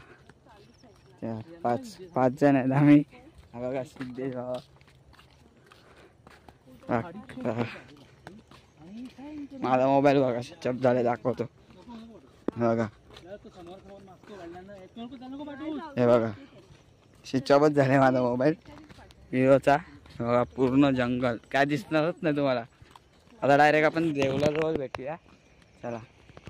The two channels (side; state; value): both; identical; correlation 1.00